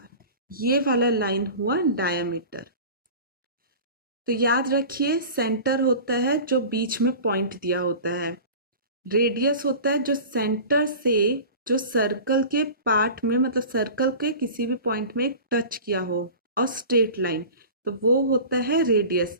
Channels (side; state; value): both; inverted; correlation -0.37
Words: ये वाला लाइन हुआ डायामीटर। तो याद रखिए सेंटर होता है जो बीच में पॉइंट दिया होता है, रेडियस होता है जो सेंटर से जो सर्कल के पार्ट में, मतलब सर्कल के किसी भी पॉइंट में टच किया हो, और स्ट्रेट लाइन, तो वो होता है रेडियस।